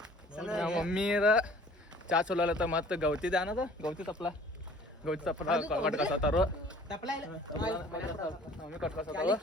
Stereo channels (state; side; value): normal; both; correlation 0.51